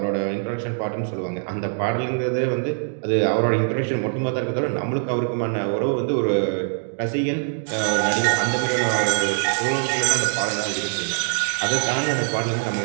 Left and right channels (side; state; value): left; silent; digital silence